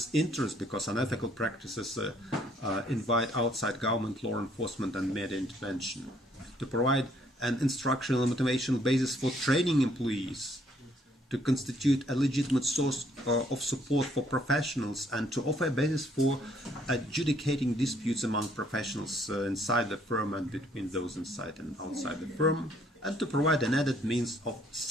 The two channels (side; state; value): both; normal; correlation 0.65